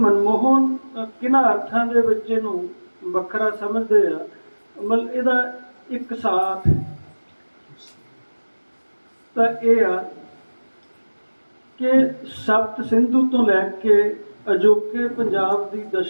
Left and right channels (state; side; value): inverted; both; correlation -1.00